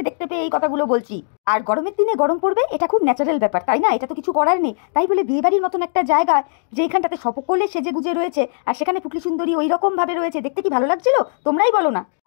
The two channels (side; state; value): right; silent; digital silence